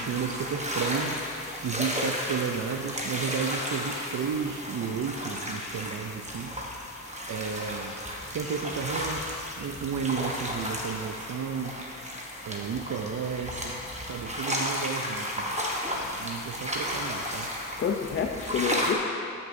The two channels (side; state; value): both; normal; correlation 0.05